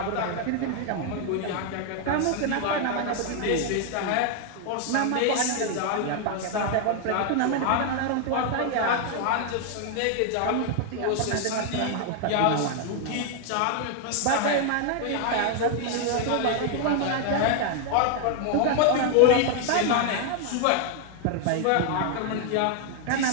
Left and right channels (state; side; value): different; both; correlation 0.00